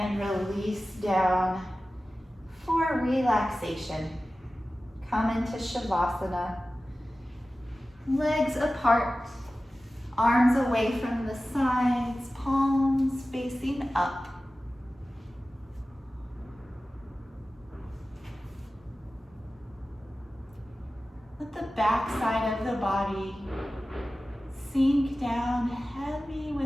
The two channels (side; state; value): both; normal; correlation 0.96